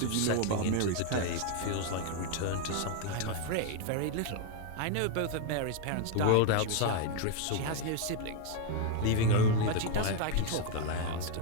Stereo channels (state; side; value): different; both; correlation 0.01